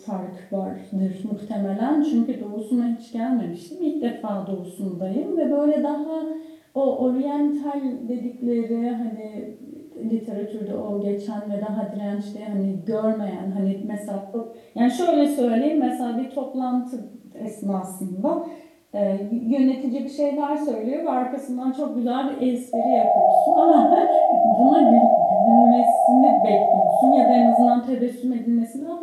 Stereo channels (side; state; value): both; identical; correlation 1.00